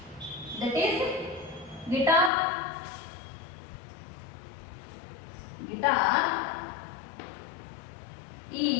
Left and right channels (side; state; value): right; drops out; at 2.3 s